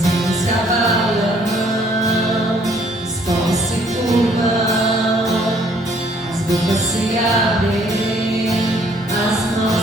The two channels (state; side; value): normal; both; correlation 0.62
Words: reinos se abalam, os povos se curvam, as bocas se abrem, as